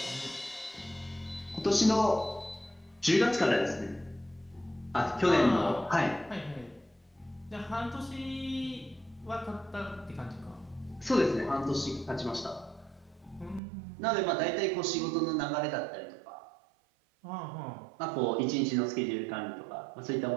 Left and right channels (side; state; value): left; drops out; at 13.6 s